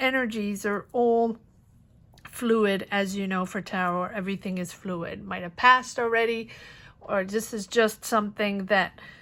are all fluid, as you know. For tarot, everything is fluid. Might have passed already, or this is just something that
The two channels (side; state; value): both; identical; correlation 1.00